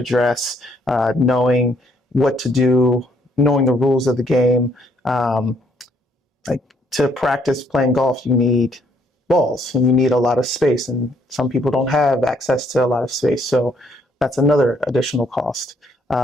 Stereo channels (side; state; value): both; normal; correlation 0.68